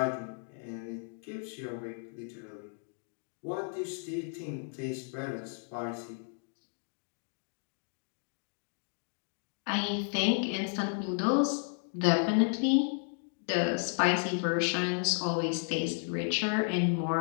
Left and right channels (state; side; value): silent; right; 56 dB below the other